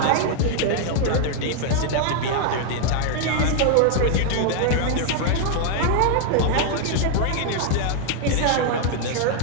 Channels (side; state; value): both; different; correlation 0.00